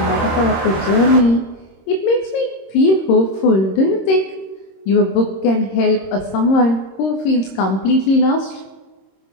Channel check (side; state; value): right; late; 26 ms